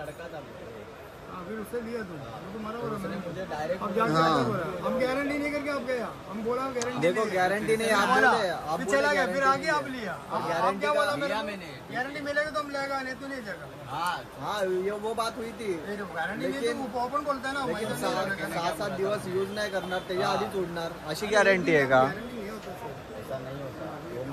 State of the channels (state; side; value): identical; both; correlation 1.00